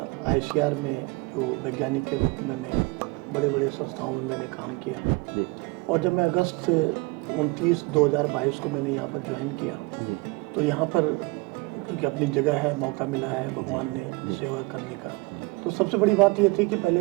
ICR में जो वैज्ञानिक के रूप में मैं बड़े बड़े संस्थाओं में मैंने काम किया और जब मैं अगस्त 29 2022 को मैंने यहाँ पर ज्वाइन किया तो यहाँ पर क्योंकि अपनी जगह है, मौका मिला है भगवान ने सेवा करने का, तो सबसे बड़ी बात ये थी कि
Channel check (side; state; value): left; quieter; 25.6 dB